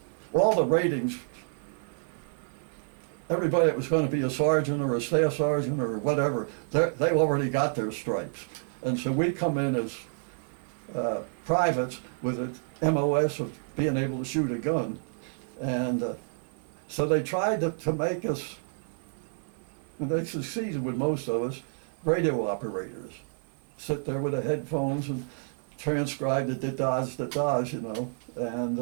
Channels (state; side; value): silent; left; 58 dB below the other